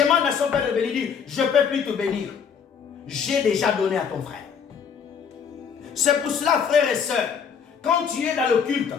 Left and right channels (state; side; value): quieter; right; 6.9 dB